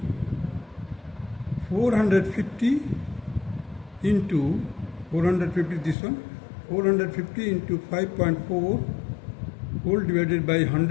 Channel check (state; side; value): drops out; right; at 6.0 s